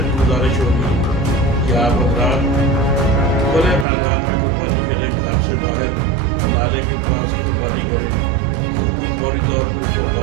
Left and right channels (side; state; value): left; drops out; at 3.9 s